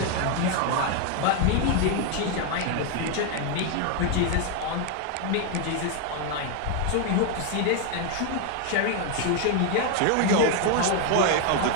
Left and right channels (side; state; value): both; different; correlation 0.01